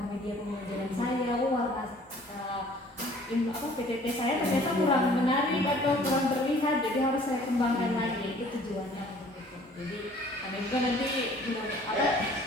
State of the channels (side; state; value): both; normal; correlation 0.53